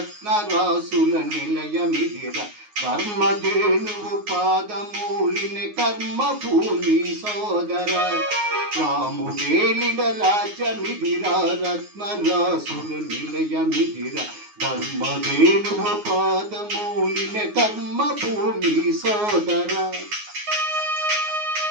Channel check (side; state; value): left; late; 9.5 ms